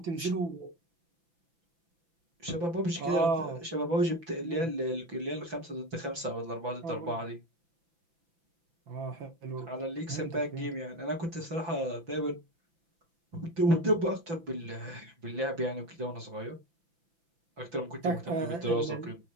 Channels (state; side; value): late; left; 5.9 ms